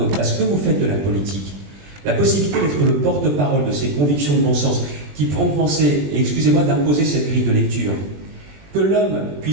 parce que vous faites de la politique, la possibilité d'être le porte-parole de ces convictions de bon sens qui pourront penser, et excusez-moi d'imposer cette grille de lecture, que l'homme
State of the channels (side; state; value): left; late; 20 ms